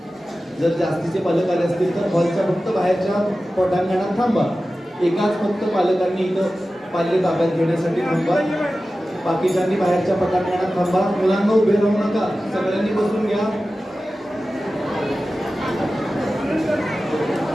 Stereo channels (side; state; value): both; normal; correlation 0.95